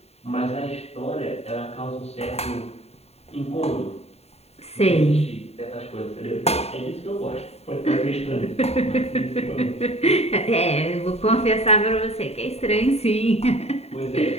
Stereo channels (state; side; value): late; right; 0.30 ms